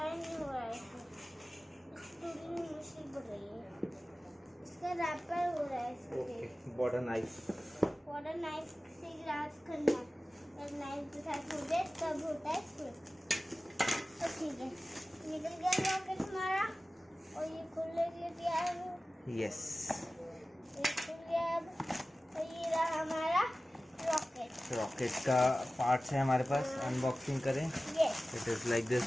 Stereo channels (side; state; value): both; normal; correlation 0.96